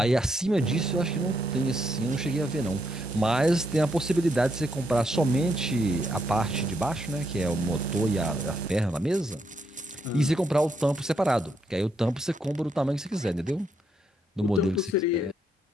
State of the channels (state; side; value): normal; both; correlation 0.77